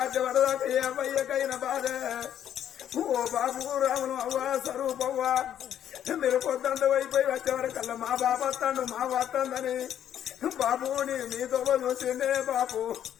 ఏ అబ్బాయికైనా బాధ ఓ బాబు రామును అవ్వా స్వరూపవ్వా మీరు పొద్దంత అయిపోయి వచ్చేవరకల్లా మా బాబు వస్తాడు మా వస్తుందని బాబు నీతో చూసిందే బాబు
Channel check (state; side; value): quieter; right; 10.3 dB